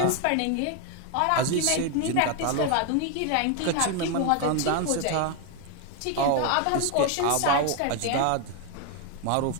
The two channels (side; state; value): both; different; correlation 0.01